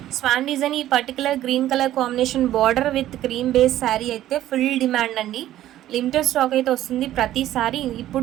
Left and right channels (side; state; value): left; quieter; 13.3 dB